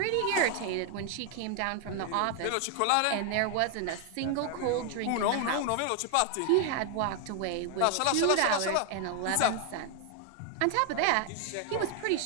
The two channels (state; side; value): different; both; correlation 0.00